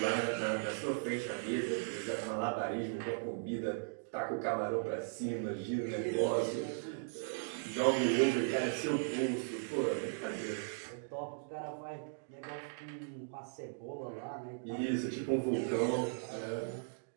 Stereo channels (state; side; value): silent; left; digital silence